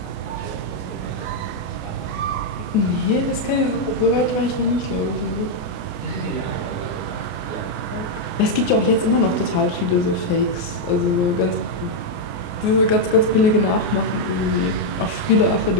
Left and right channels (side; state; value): right; late; 28 ms